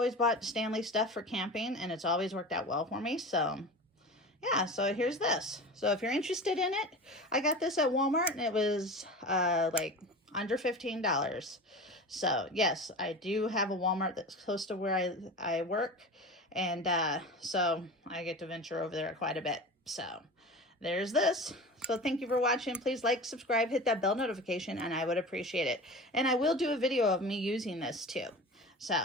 bought Stanley stuff for camping, and it's always worked out well for me. So yeah, so here's this. So if you're interested in it, I got this at Walmart, and it was like under $15. So yes, I do have a Walmart that's close to where I work, and so I get to venture over there quite a bit. So there's this. So thank you for watching. Please like, subscribe, hit that bell notification, and I would appreciate it. And I will do a video of me using this too.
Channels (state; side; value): normal; both; correlation 0.32